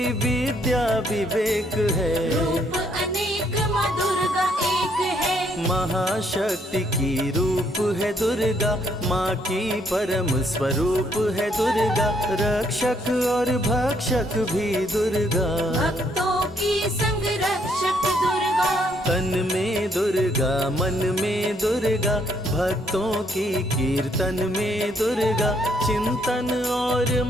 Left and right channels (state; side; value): normal; both; correlation 0.70